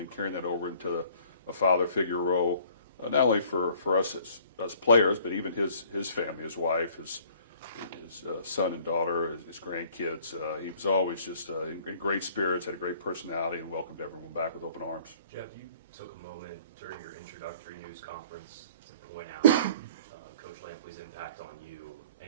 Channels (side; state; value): both; inverted; correlation -0.55